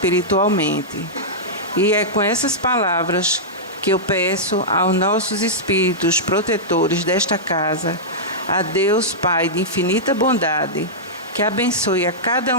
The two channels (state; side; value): normal; both; correlation -0.11